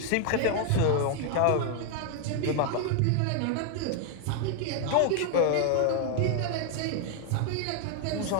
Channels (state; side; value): different; both; correlation 0.00